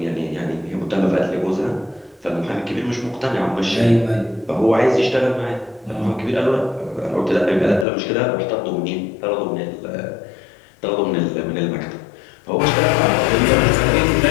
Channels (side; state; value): right; drops out; at 7.9 s